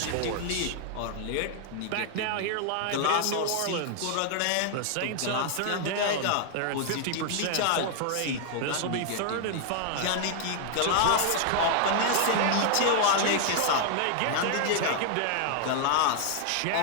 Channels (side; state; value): both; different; correlation 0.00